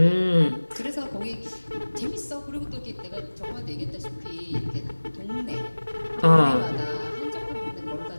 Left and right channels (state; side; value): inverted; both; correlation -1.00